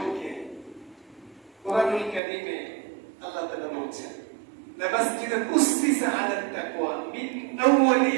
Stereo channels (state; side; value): drops out; left; at 2.2 s